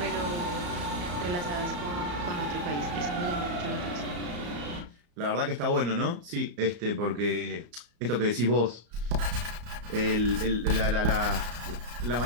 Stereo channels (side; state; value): left; late; 34 ms